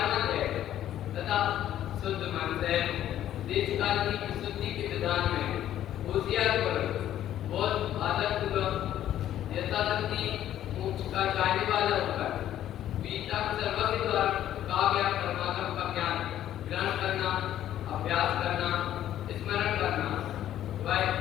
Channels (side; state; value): right; quieter; 11.9 dB